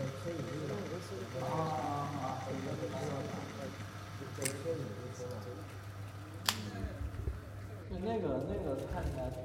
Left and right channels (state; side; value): identical; both; correlation 1.00